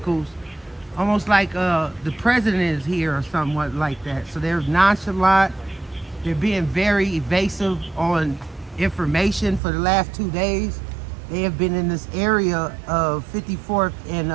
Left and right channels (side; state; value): left; drops out; at 9.6 s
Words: almost like the president is here or somewhat like that. So they're nonchalant. They're being very evasive on information for the last 2 days. They have been in this area of 54th